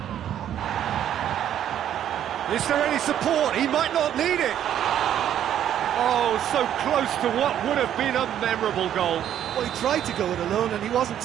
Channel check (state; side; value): quieter; left; 10.5 dB